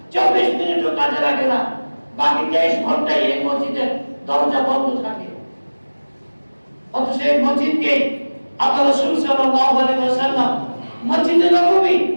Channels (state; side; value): inverted; both; correlation -1.00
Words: 24 মিনিটও কাজে লাগে না, বাকি 23 ঘন্টায় এই মসজিদের দরজা বন্ধ থাকে। অথচ এই মসজিদকে আল্লাহ রাসূল সাল্লাল্লাহু আলাইহি ওয়াসাল্লাম মসজিদে নববী,